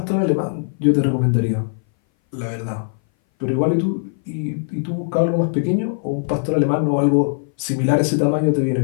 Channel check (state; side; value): silent; right; 60 dB below the other